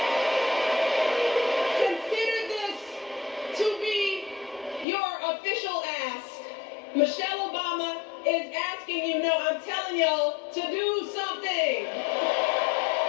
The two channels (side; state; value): right; drops out; at 4.9 s